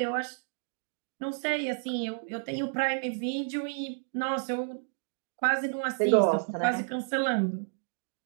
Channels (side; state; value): left; silent; digital silence